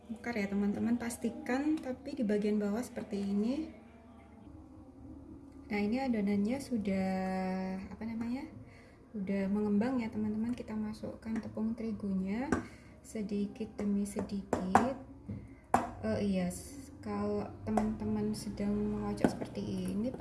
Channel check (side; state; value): both; identical; correlation 1.00